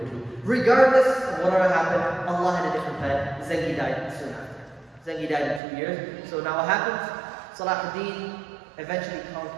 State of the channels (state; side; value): drops out; left; at 5.6 s